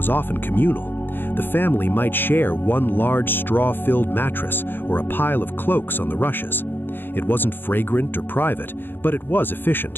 often communal. The family might share one large straw-filled mattress or a pile of cloaks on the rushes. It wasn't fragrant or private, but it was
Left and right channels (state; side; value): late; right; 0.099 ms